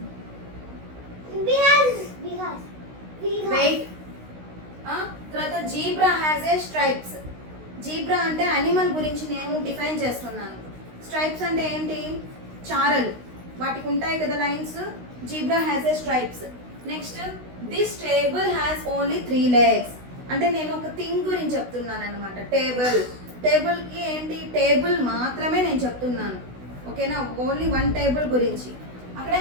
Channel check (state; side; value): late; left; 16 ms